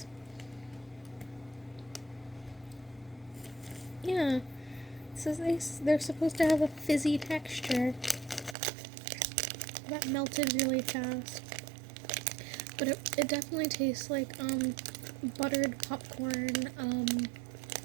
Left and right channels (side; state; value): left; drops out; at 8.6 s